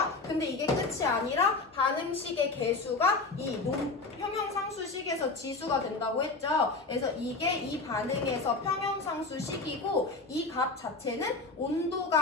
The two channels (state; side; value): quieter; right; 3.7 dB